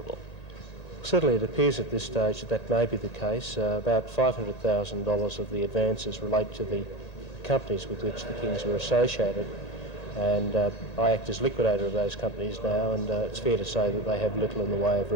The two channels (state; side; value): late; right; 1.8 ms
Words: Certainly it appears at this stage that that may be the case. About $500,000 of the advances relate to the companies with which the Kings were associated, and I act as liquidator of those companies now, and it's fair to say that they have little in the way of